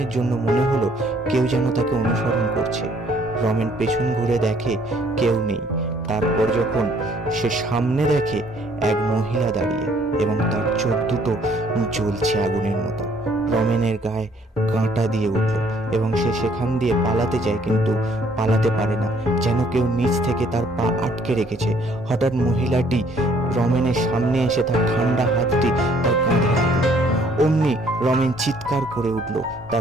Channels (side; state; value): both; normal; correlation 0.62